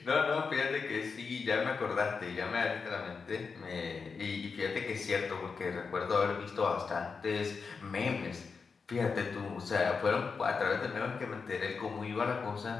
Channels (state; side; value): quieter; right; 5.1 dB